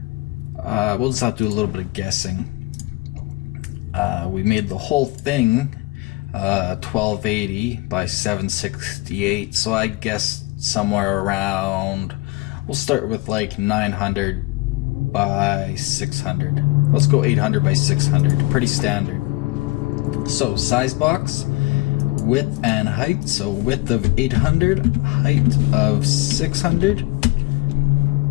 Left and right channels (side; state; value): right; quieter; 21.7 dB